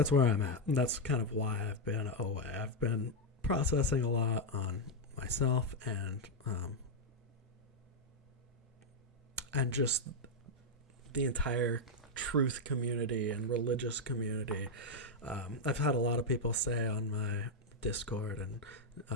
where I'm at. And that's kind of why I've been away. I've been processing a lot on myself and just the entire truth community and religious community. I've had a lot of people say on my Discord and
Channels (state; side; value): normal; both; correlation 0.01